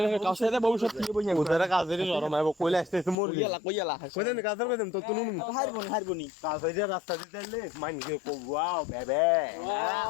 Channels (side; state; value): right; drops out; at 3.2 s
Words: কাউসারে ভবিষ্যৎ কি বইয়া ওদের কাজের নরম আইবো কইলে আসতেছে মোর কইয়ালা কইদেন কাজের কইদেন তো তুনুন হারবনি কাজে রাস্তা দিতে লে মাইন গে কো ওয়াও বেবে